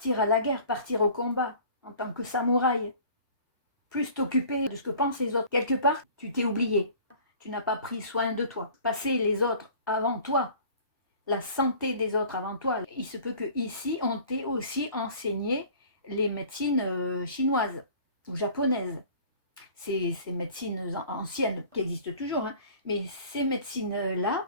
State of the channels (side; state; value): both; inverted; correlation -0.47